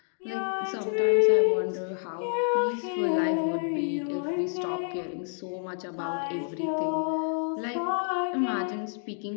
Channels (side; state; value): right; silent; 59 dB below the other